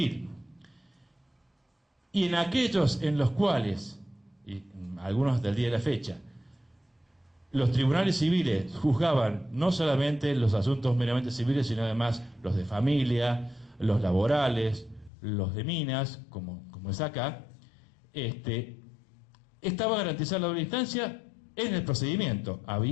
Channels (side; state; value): right; drops out; at 15.1 s